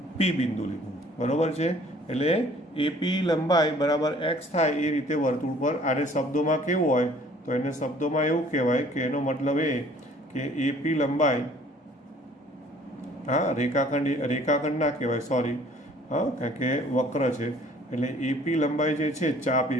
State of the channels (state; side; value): normal; both; correlation 0.55